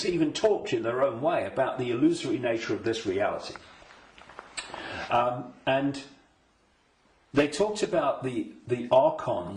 even talked in their own way about the illusory nature of this reality. And they talked about the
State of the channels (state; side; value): identical; both; correlation 1.00